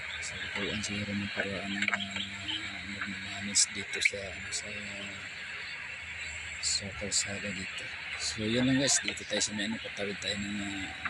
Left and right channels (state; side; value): identical; both; correlation 1.00